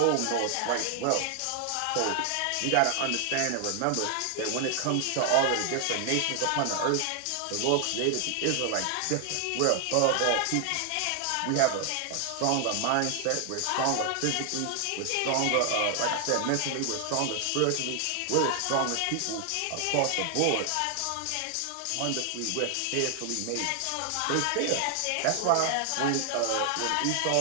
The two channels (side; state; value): both; different; correlation 0.00